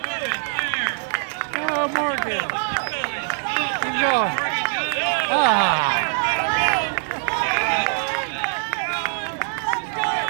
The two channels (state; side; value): silent; left; 59 dB below the other